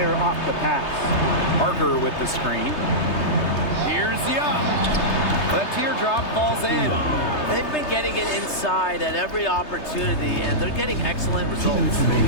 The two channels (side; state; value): right; late; 3.3 ms